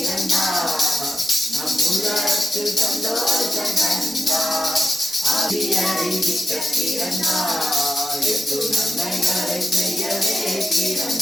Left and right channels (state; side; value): normal; both; correlation 0.90